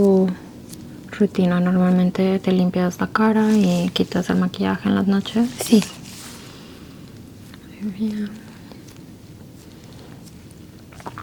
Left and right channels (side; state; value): both; identical; correlation 1.00